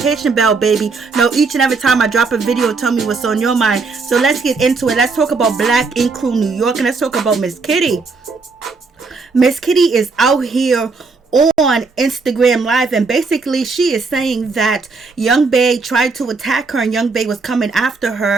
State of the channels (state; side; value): quieter; left; 4.3 dB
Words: bell, baby. Know each and every time I drop a video, tell me what's on your mind. So let's get into it. Let's talk about Black Ink Crew New York, and let's talk about Miss Kitty. Miss Kitty is out here on Instagram Live, and basically she is saying that Young Bae tried to attack her and Young Bae was coming after